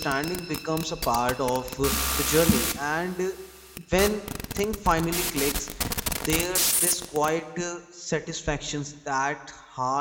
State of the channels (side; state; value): both; identical; correlation 1.00